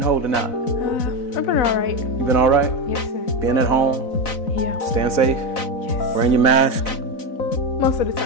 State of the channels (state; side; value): late; right; 4.0 ms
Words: holding out? I've been all right. You been all right? Yes, sir. Being at home? Yeah. Staying safe? Yes. Wearing your mask? Most of the